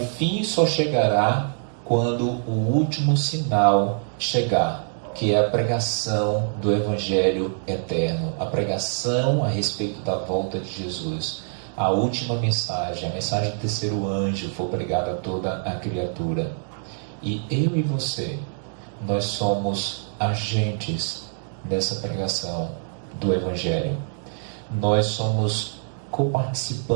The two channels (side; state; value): left; silent; 61 dB below the other